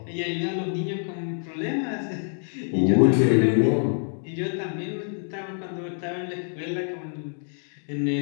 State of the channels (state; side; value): silent; right; 61 dB below the other